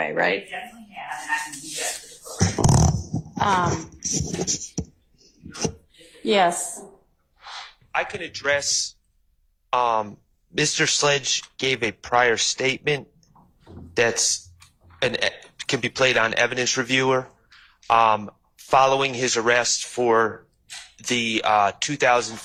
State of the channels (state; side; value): identical; both; correlation 1.00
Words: right? Definitely have, and I can do that for the program. Yes. I can address, Mr. Sledge gave a prior statement that's can be played on evidence reviewer, following his arrest for the